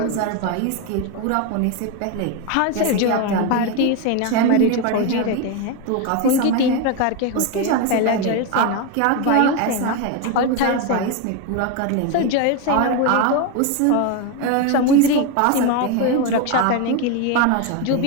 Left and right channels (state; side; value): different; both; correlation 0.02